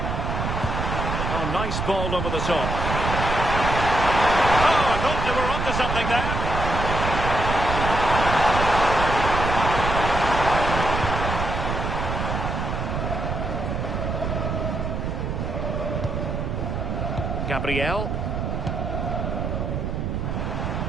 Oh, nice ball over the top. Oh, I thought they were onto something there. Gabriel.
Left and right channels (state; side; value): noise; right; rumble, 2 dB below the sound